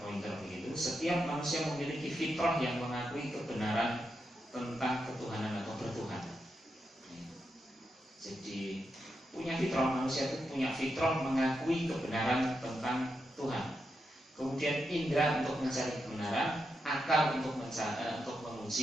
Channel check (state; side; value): normal; both; correlation 0.85